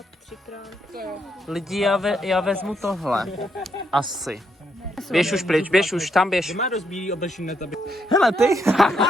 3x. Lidi, já vezmu tohle. Asi. Běž už pryč, běž už, tam běž. má dost bílý oblečení na tobě. Hele ty!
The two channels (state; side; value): normal; both; correlation 0.77